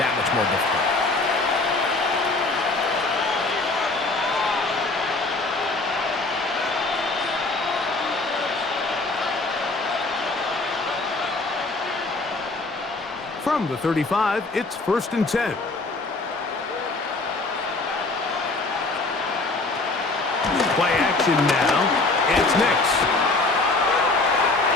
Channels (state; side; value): quieter; right; 3.3 dB